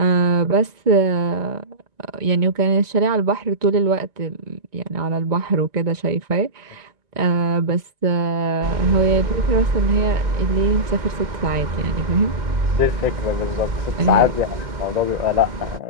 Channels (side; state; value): left; late; 1.9 ms